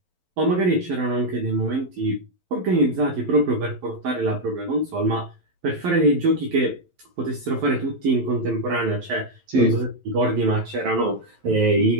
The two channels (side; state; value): left; late; 11 ms